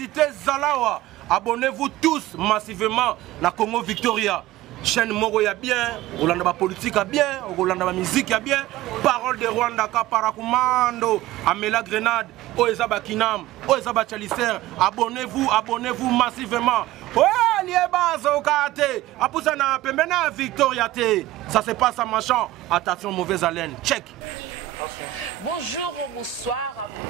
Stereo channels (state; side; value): quieter; left; 15.7 dB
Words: Zalawa. Abonnez-vous tous massivement na Congo Victoria. Chaîne Moro ya bien, Rolanda ba politique a bien, Rolanda ba musique a bien, parole de Rwanda ka parakumando, Amela Grenade, Oezaba Kinam, Oezaba Chalicer. Abonnez-vous massivement. Ouais, lieba zokate. Apusa na pembena Victoria te. Ça se passe à machin. Attention mauvaise haleine. Check. Bonjour, bonsoir à vous